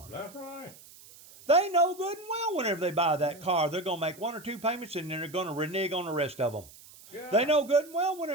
That's right. They know good and well whenever they buy that car, they're going to make 1 or 2 payments and then they're going to renege on the rest of them. Yeah. They know good and well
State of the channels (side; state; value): right; noise; hiss, 21 dB below the sound